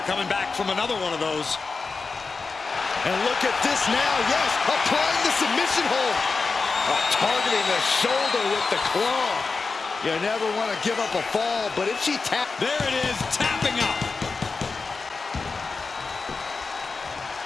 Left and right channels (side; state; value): right; quieter; 4.4 dB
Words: coming back from another one of those. And look at this now, yes, applying the submission hold. Targeting the shoulder with the claw. You never want to give up a fall, but if she taps... There it is, tapping up.